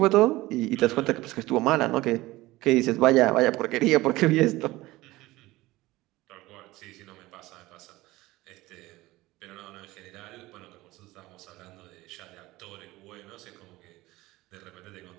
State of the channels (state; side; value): quieter; left; 18.8 dB